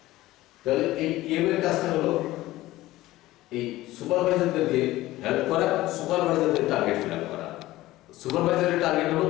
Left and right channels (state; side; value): quieter; right; 16.9 dB